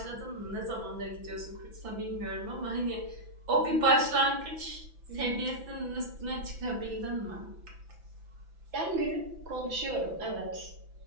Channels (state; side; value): late; left; 6.0 ms